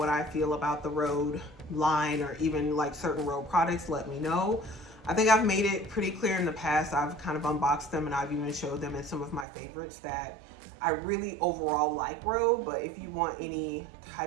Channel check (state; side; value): drops out; left; at 9.5 s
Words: I feel about the Rhode line or even like certain Rhode products, let me know. I think I've made it pretty clear in the past. I've kind of unboxed them and I've even showed them in some of my favorites that I really overall like Rhode. But if you want any